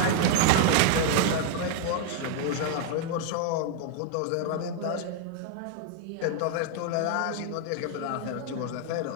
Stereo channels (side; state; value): both; different; correlation 0.00